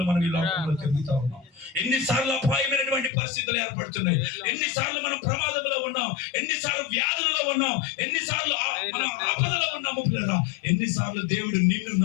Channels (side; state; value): right; drops out; at 3.1 s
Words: మనం ఈ లోకంలో తిరుగుతా ఉన్నాం, ఎన్నిసార్లు అపాయమైనటువంటి పరిస్థితులు ఏర్పడుతున్నాయి, ఎన్నిసార్లు మనం ప్రమాదంలో ఉన్నాం, ఎన్నిసార్లు వ్యాధులలో ఉన్నాం, ఎన్నిసార్లు మనం ఆపదలో ఉన్నాము పిల్లరా. ఎన్నిసార్లు దేవుడు నిన్ను